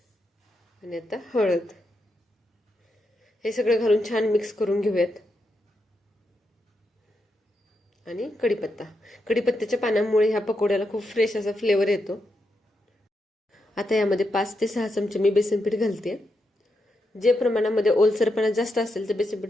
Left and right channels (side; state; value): both; normal; correlation 0.84